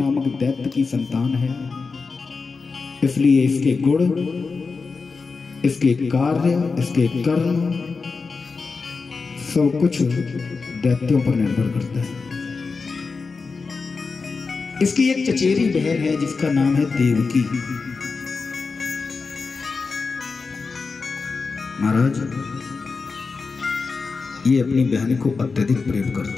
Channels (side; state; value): right; quieter; 4.5 dB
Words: दैत्य की संतान है, इसलिए इसके गुण इसके कार्य, इसके कर्म सब कुछ दैत्यों पर निर्भर करता है। इसकी एक चचेरी बहन है जिसका नाम है देवकी। महाराज, ये अपनी बहन को अत्यधिक प्रेम